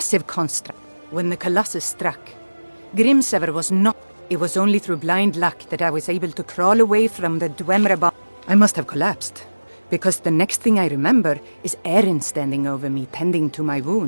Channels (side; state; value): both; inverted; correlation -1.00